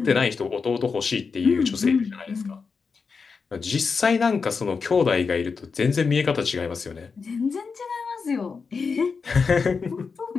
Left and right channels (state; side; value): quieter; right; 5.2 dB